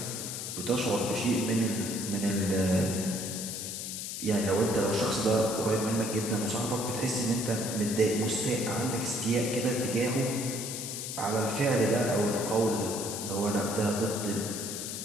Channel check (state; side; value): noise; left; hiss, 5 dB below the sound